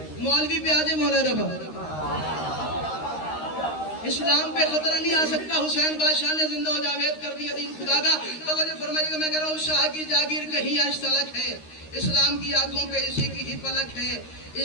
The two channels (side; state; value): right; late; 13 ms